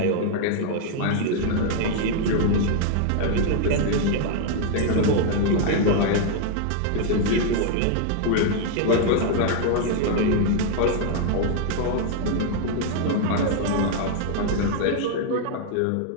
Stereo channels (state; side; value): different; both; correlation 0.00